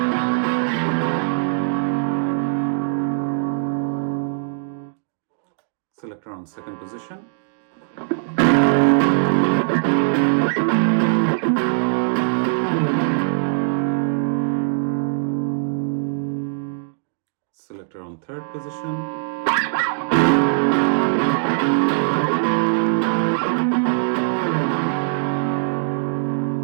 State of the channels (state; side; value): silent; left; digital silence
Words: Selector on second position. Selector on third position.